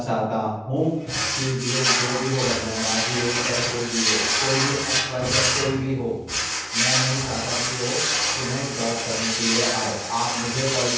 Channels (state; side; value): identical; both; correlation 1.00